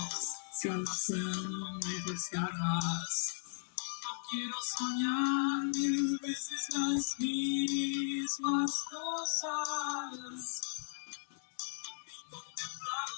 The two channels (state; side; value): silent; right; digital silence